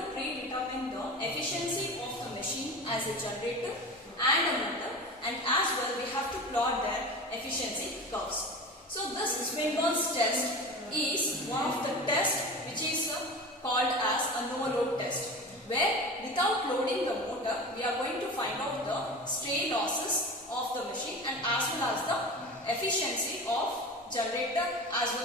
predetermine the efficiency of the machine as a generator and a motor, and as well we have to plot their efficiency curves. So this Swinburne's test is one of the tests which is called as a no-load test, where without loading the motor we are going to find out the stray losses of the machine and as well as the efficiency of generator as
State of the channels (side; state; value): both; normal; correlation 0.32